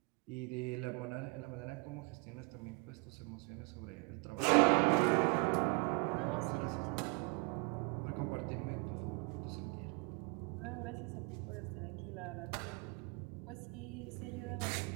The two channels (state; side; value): quieter; left; 31.4 dB